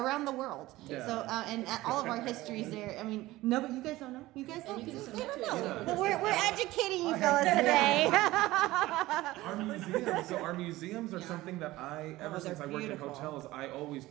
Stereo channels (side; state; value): left; quieter; 17.8 dB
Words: the world. Yeah. So, and all of our histories there. I mean, no, but you guys don't know. You guys don't. And you can They don't submit to it, know. too. But we're educating you fellas today. Our museums are something that ever since I worked in beautiful. hotels, I always